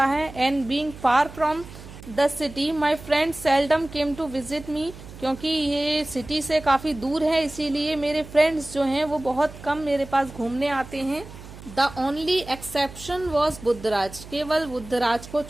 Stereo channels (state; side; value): noise; right; hum, 16 dB below the sound